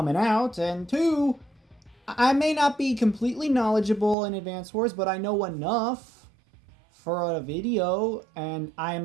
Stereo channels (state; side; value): drops out; left; at 4.2 s